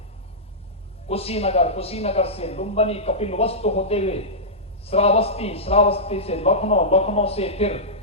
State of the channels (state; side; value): normal; both; correlation -0.14